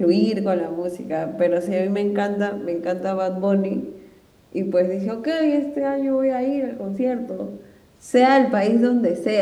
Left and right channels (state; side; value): identical; both; correlation 1.00